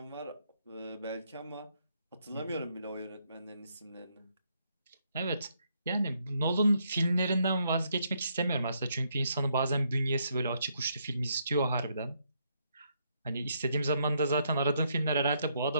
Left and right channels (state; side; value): inverted; both; correlation -0.75